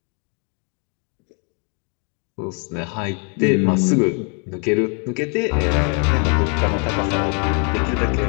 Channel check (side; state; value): right; quieter; 38.0 dB